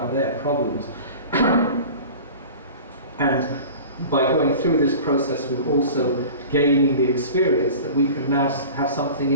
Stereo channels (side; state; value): both; inverted; correlation -0.38